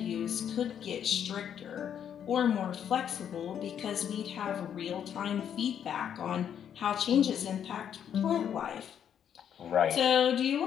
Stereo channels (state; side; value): quieter; right; 8.9 dB